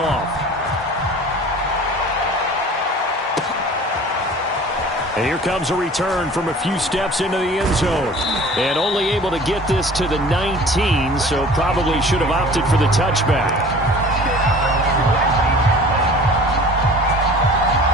And here comes a return from a few steps into the end zone. And only able to get this to the 19, so probably should have opted for the touchback.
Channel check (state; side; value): normal; both; correlation 0.45